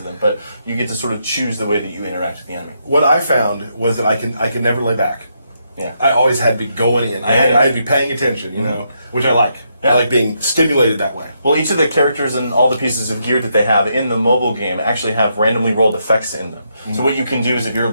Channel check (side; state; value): both; inverted; correlation -0.79